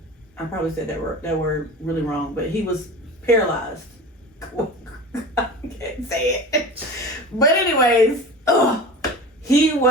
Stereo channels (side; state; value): both; normal; correlation 0.34